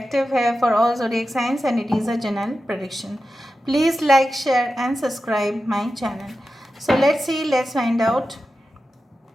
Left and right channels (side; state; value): both; normal; correlation 0.92